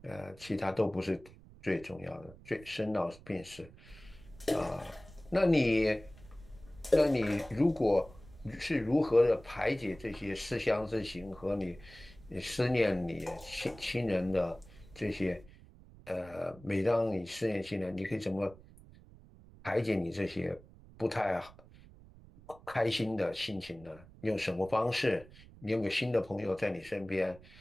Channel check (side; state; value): right; noise; rumble, 21 dB below the sound